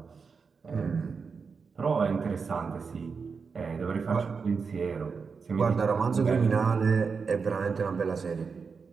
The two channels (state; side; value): quieter; left; 5.3 dB